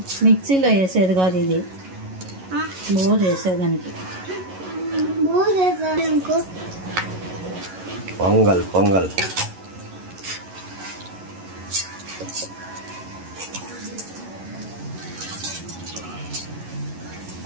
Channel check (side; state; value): left; late; 11 ms